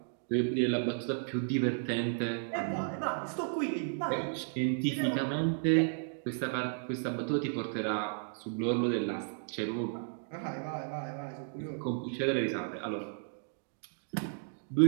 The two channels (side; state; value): left; silent; digital silence